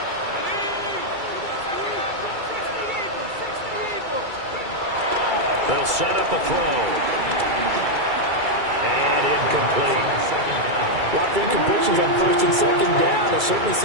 They'll set up a throw. And incomplete. Lots of incompletions on 1st and 2nd down. It certainly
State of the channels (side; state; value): left; late; 2.3 ms